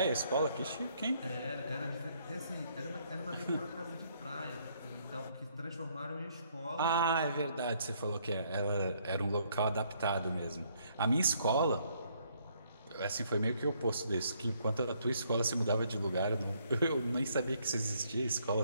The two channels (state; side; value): inverted; both; correlation -0.69